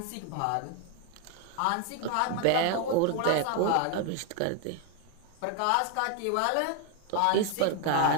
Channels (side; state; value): both; different; correlation 0.01